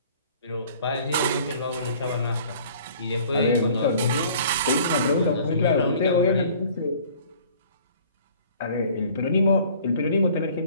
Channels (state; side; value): inverted; both; correlation -0.52